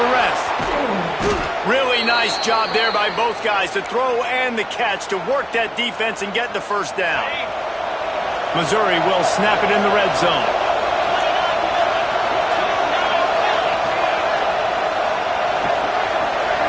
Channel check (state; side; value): identical; both; correlation 1.00